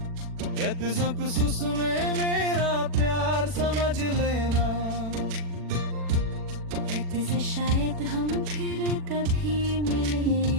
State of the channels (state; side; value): late; left; 40 ms